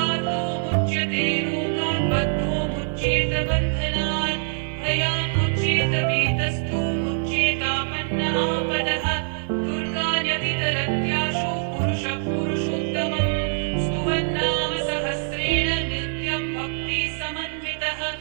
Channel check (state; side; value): silent; left; digital silence